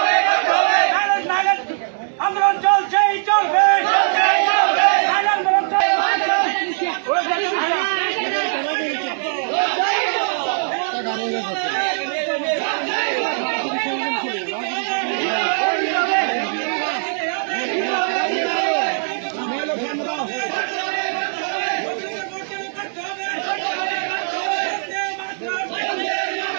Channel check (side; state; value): left; silent; digital silence